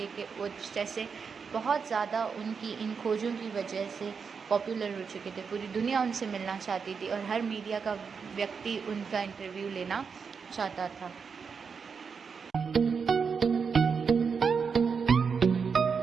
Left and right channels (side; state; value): left; quieter; 5.8 dB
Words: कि वो जैसे बहुत ज़्यादा उनकी इन खोजों की वजह से पॉपुलर हो चुके थे। पूरी दुनिया उनसे मिलना चाहती थी और हर मीडिया का व्यक्ति उनका इंटरव्यू लेना चाहता था।